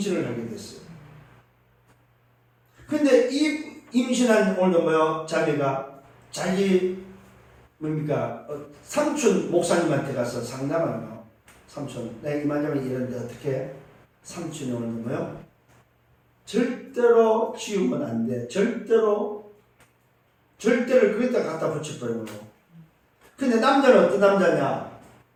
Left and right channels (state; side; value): identical; both; correlation 1.00